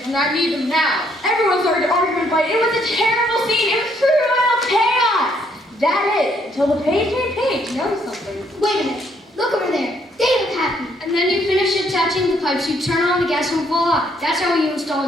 and I need them now. Everyone started arguing, but it was a terrible scene. It was pure royal chaos. That is, until the page made page noticed something. Wait a minute, look over there. They look happy. And then you finish attaching the pipes, you turn on the gas and voila. That's how you install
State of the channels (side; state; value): both; normal; correlation 0.69